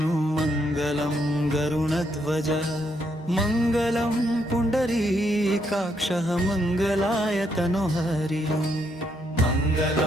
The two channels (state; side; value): normal; both; correlation 0.75